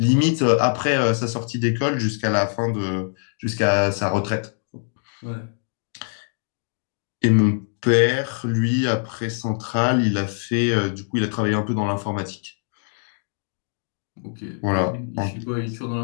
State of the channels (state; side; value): silent; right; digital silence